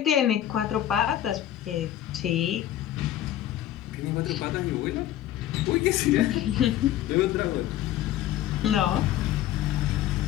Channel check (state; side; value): quieter; right; 12.4 dB